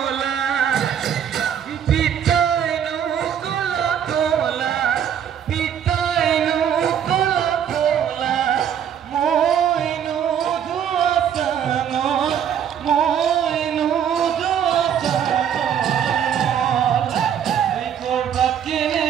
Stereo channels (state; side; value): quieter; left; 8.8 dB